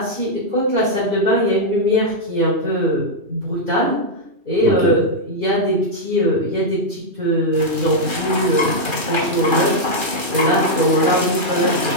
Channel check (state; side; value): late; left; 2.4 ms